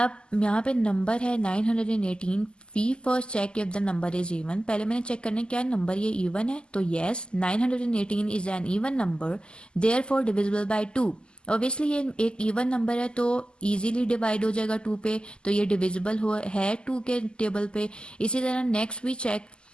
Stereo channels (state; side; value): late; right; 0.049 ms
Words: यहाँ पे नंबर है 918। We first check if the number is even. पहले मैंने चेक करना है क्या नंबर ये इवन है, तो yes 918 is an even number therefore divisible by 2। Obviously ये एक इवन नंबर है तो इजीली डिवाइड हो जाएगा 2 पे, तो ये डिविजिबल हो है 2 के टेबल पे। इसी तरह next we check